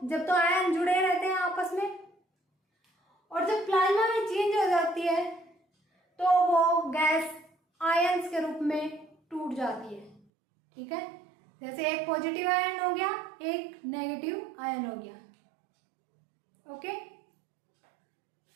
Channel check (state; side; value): drops out; left; at 10.2 s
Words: जब तो आयन जुड़े रहते हैं आपस में, और जब प्लाज्मा में चेंज हो जाती है तो वो गैस आयंस के रूप में टूट जाती है। ठीक है, जैसे एक पॉजिटिव आयन हो गया, एक नेगेटिव आयन हो गया। ओके,